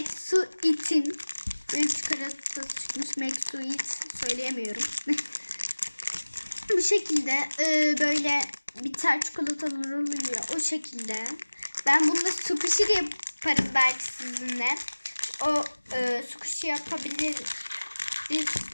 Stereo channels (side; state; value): both; inverted; correlation -1.00